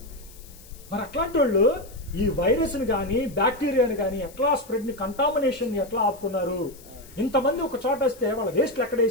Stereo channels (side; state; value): left; noise; hiss, 22 dB below the sound